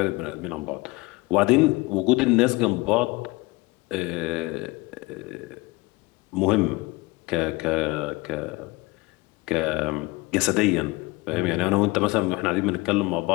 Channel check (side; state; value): right; quieter; 23.2 dB